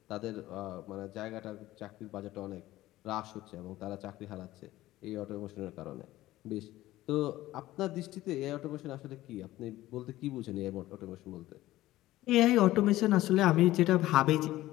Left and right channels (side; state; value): right; quieter; 16.1 dB